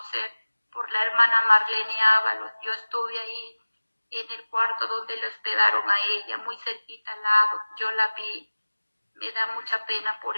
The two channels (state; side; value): inverted; both; correlation -1.00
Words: por la hermana Marlene Ábalos. Yo estuve ahí en el cuarto donde le hospedaron a ella, muy cerquita al lado. Yo la vi. Me da mucha pena por